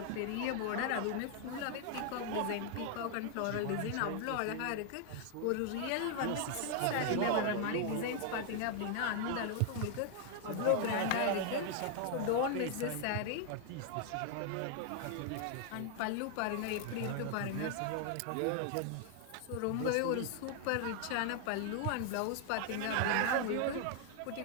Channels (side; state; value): both; different; correlation 0.00